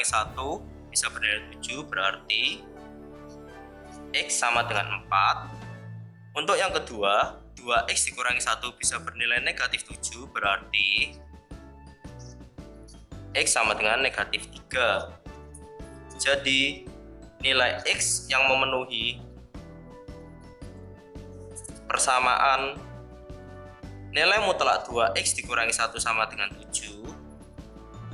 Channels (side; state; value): both; identical; correlation 1.00